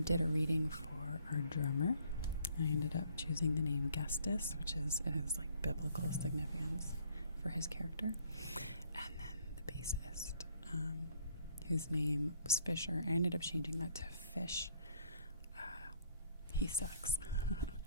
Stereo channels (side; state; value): both; inverted; correlation -0.62